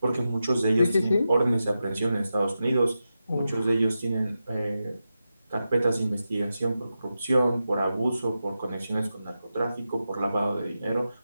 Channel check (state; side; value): inverted; both; correlation -0.90